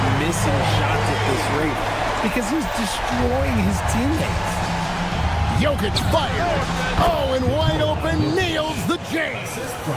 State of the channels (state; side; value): identical; both; correlation 1.00